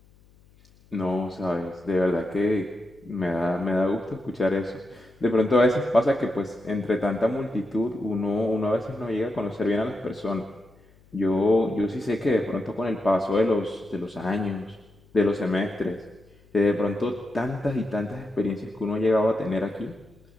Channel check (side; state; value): left; noise; hum, 29 dB below the sound